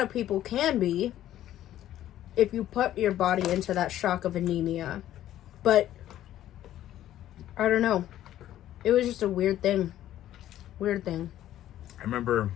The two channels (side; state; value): right; quieter; 12.7 dB